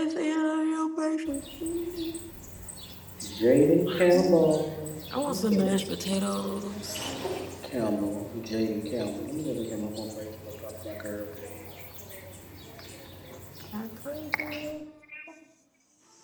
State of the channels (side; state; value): both; identical; correlation 1.00